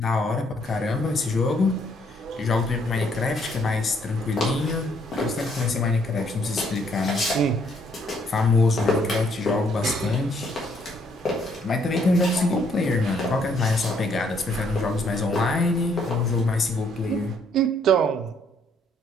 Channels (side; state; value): both; normal; correlation 0.67